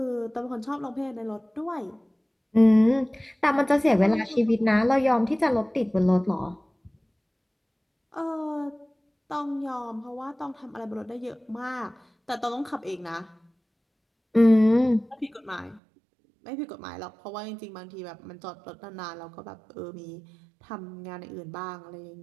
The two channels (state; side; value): drops out; left; at 15.8 s